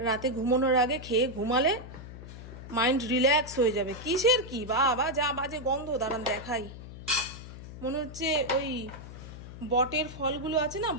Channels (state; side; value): noise; left; hum, 13 dB below the sound